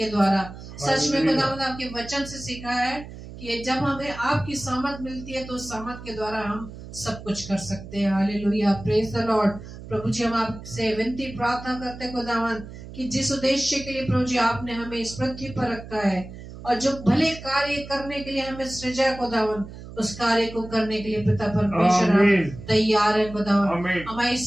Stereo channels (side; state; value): right; noise; hum, 14 dB below the sound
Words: द्वारा। सच में खुदावंद आपके वचन से सीखा है कि जब हमें आपकी सामर्थ मिलती है तो उस सामर्थ के द्वारा हम सब कुछ कर सकते हैं। Hallelujah, praise the Lord. प्रभु जी हम आपसे विनती प्रार्थना करते हैं खुदावंद कि जिस उद्देश्य के लिए प्रभु जी आपने हमें इस पृथ्वी पर रखा है और जो भले कार्य करने के लिए हमें सृजा खुदावंद, उस कार्य को करने के लिए पिता परमेश्वर हम तैयार है खुदावंद। हमारी